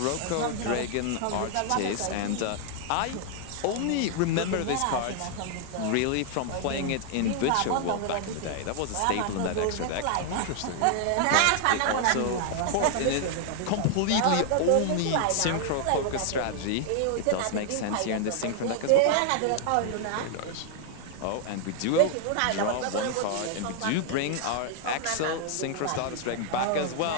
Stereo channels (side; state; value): both; different; correlation 0.00